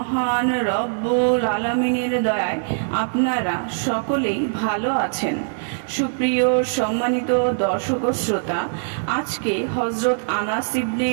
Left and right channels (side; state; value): left; silent; 63 dB below the other